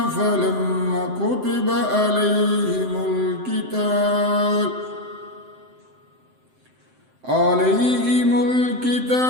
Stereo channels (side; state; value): left; late; 7.7 ms